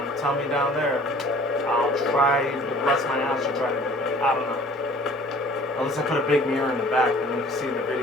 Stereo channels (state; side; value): normal; both; correlation 0.50